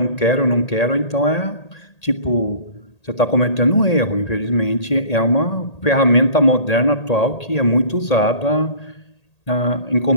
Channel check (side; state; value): right; late; 1.8 ms